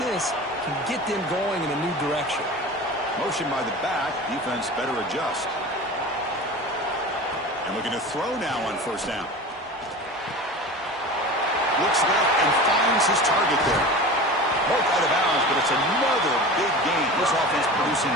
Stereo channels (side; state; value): both; normal; correlation 0.34